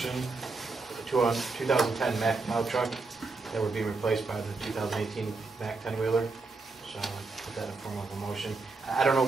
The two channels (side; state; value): left; quieter; 3.8 dB